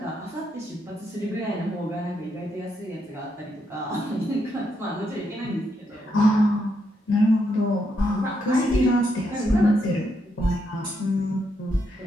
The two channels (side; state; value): both; normal; correlation 0.79